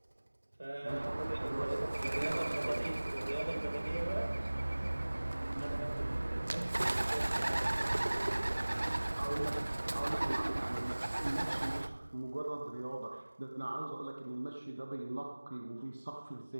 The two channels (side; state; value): both; inverted; correlation -1.00